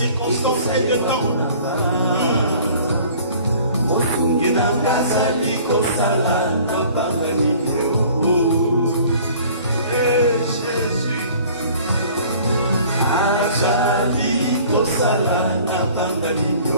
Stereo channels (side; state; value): both; inverted; correlation -0.50